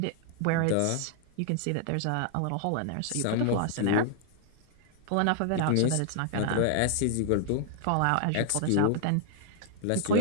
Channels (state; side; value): different; both; correlation 0.00